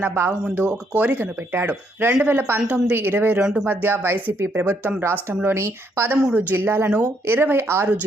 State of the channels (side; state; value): both; normal; correlation 0.73